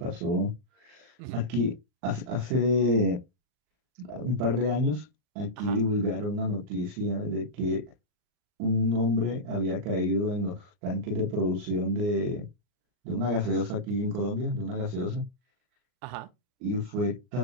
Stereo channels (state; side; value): late; left; 39 ms